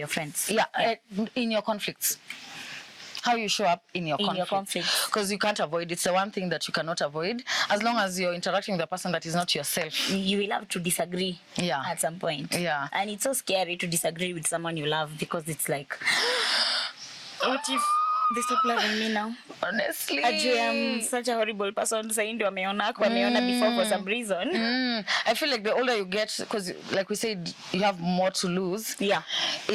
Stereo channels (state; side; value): identical; both; correlation 1.00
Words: friends. In your conflicts. How you show up in your conflicts. Because you can't avoid it. It's the one thing that you cannot avoid. As long as you're interacting with a person that is not yourself. You will have to disagree at some point. Yeah. And it's so scary to disagree with someone you love because it's like, what if they stop loving me now? Honestly. Actually, I'm such a horrible person. Saying to wameona before for some reason. I feel like the older you get, because like we said, you have more to lose. Yeah.